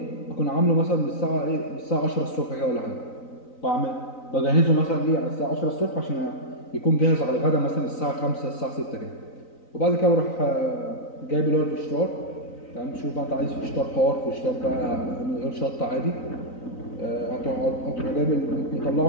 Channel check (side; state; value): right; late; 3.9 ms